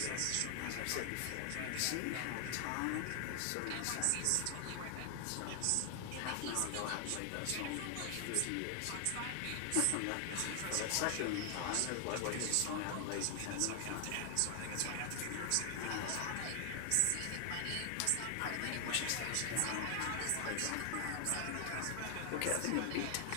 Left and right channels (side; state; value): both; different; correlation 0.00